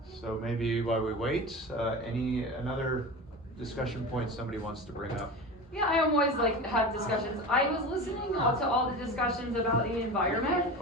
So maybe while we wait, another discussion point somebody wants to bring up? Yeah, I always have discussions. I was listening to all the discussions about the environment.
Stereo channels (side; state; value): both; normal; correlation 0.29